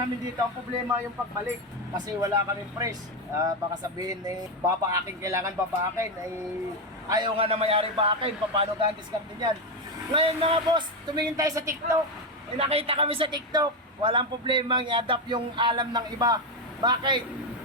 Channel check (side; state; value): both; normal; correlation 0.09